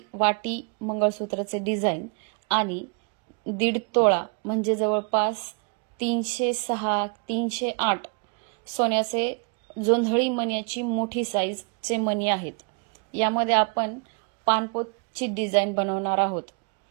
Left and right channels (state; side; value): quieter; left; 36.0 dB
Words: वाटी मंगळसूत्राचे डिझाइन आणि 1.5 तोळा म्हणजे जवळपास 306 308 सोन्याचे जोंधळी मण्याची मोठी साईजचे मणी आहेत. यामध्ये आपण पानपोतची डिझाइन बनवणार आहोत.